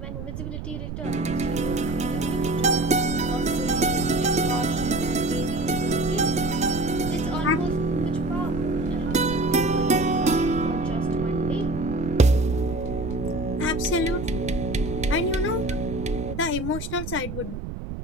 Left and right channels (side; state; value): right; noise; rumble, 7 dB below the sound